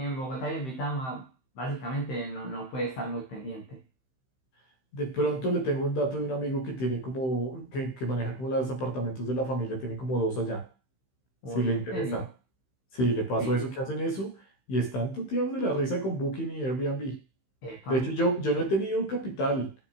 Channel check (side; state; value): right; late; 15 ms